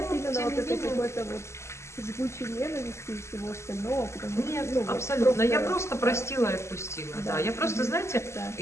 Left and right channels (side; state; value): right; late; 0.13 ms